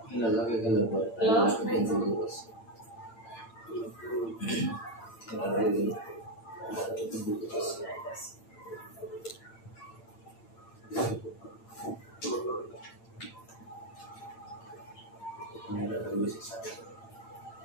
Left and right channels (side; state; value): right; late; 8.8 ms